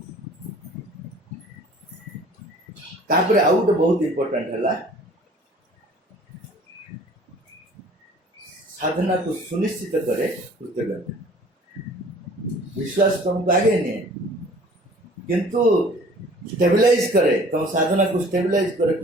तापर आउ गोटे बहुत इम्पोर्टाट है साधना को सुनिश्चित करे कृतज्ञता। विश्वास तुमको आगे नहीं किंतु स्टेबलाइज करे तुम साधना को स्टेबलाइज करे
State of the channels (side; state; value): both; normal; correlation 0.50